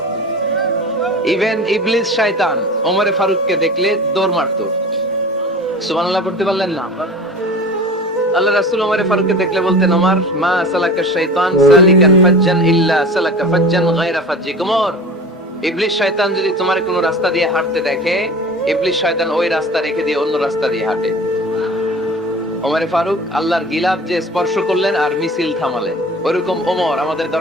ইভেন ইবলিস শয়তান ওমর ফারুককে দেখলে দৌড় মারতো। সুবহানাল্লাহ পড়তে পারলেন না? আল্লাহ রাসূল ওমর ফারুককে দেখলে বলতেন, ওমর মা সালাকা শাইতান সালিকান ফাজ্জান ইল্লা সালাকা ফাজ্জান গায়রা ফাজ্জিক। ওমর, ইবলিস শয়তান যদি তোমার কোনো রাস্তা দিয়ে হাঁটতে দেখে, ইবলিস শয়তান ওই রাস্তা রেখে দিয়ে অন্য রাস্তা দিয়ে হাঁটে। ওমর ফারুক আল্লাহর গিলাফ যে স্পর্শ করলেন আর মিছিল থামালেন, ওরকম ওমর আমাদের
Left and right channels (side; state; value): both; normal; correlation 0.37